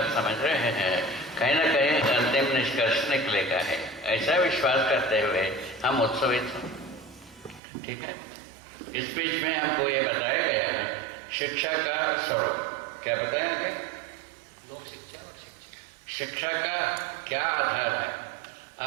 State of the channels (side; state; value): left; drops out; at 7.6 s